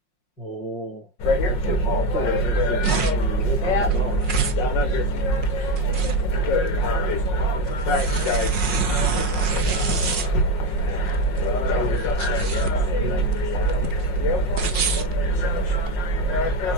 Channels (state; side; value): late; right; 5.5 ms